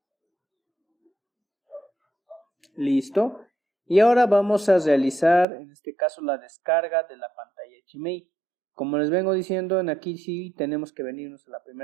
Listo. Y ahora vamos a realizar, en este caso, la descarga de la pantalla HMI. Como les vengo diciendo, en aquí sí tenemos que venirnos a la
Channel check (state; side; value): drops out; left; at 5.5 s